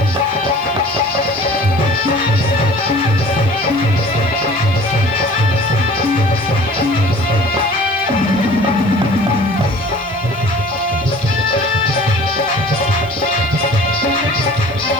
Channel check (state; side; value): noise; left; hiss, 28 dB below the sound